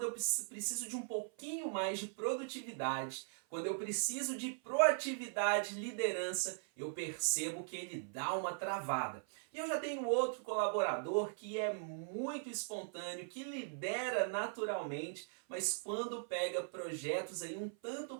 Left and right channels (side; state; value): left; silent; 51 dB below the other